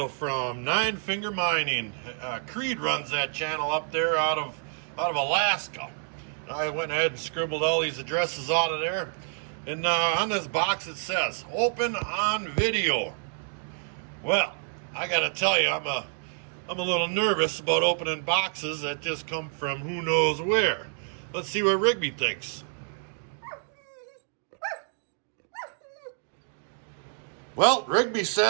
from Nine Finger Mining. Creed runs that channel up there out of Alaska. I went ahead and scribbled all these addresses out of there. And on this box it says, open on video. Well, I gotta tell you, I'm a little nervous about opening boxes that just come from who knows where. Let's see what Rigby thinks. Well, Rigby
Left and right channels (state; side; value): silent; left; 59 dB below the other